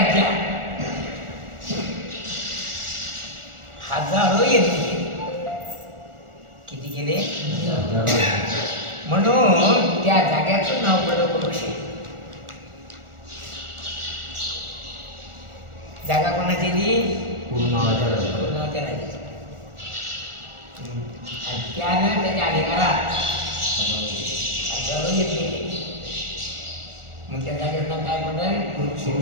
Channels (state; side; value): late; left; 1.4 ms